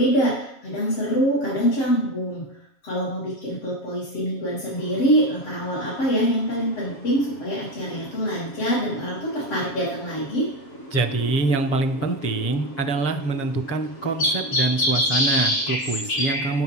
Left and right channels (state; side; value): late; right; 7.3 ms